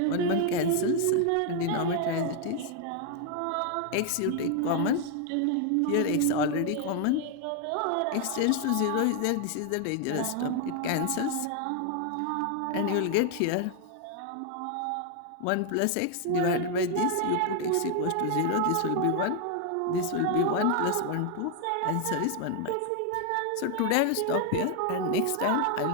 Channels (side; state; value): both; different; correlation 0.00